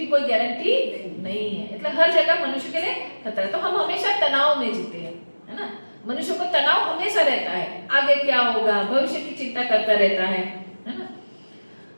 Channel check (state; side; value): inverted; both; correlation -1.00